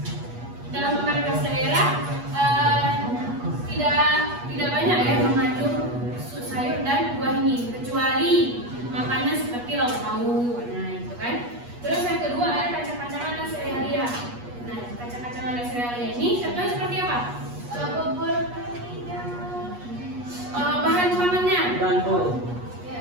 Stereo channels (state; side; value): late; left; 8.3 ms